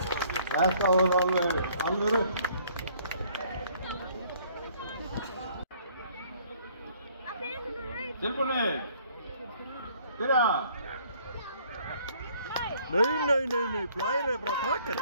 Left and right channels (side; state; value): both; inverted; correlation -0.59